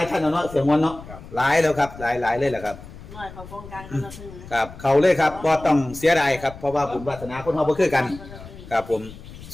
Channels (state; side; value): noise; left; rumble, 16 dB below the sound